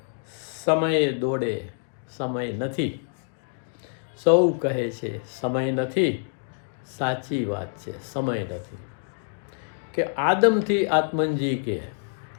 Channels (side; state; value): right; silent; digital silence